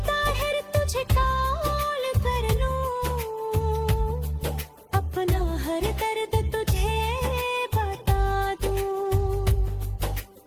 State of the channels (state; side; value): identical; both; correlation 1.00